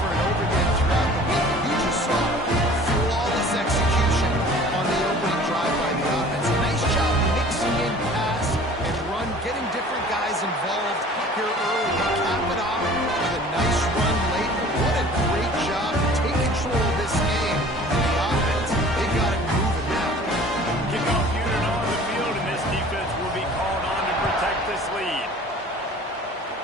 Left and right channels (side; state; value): both; normal; correlation 0.47